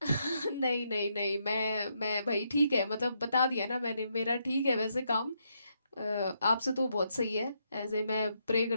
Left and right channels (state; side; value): inverted; both; correlation -0.78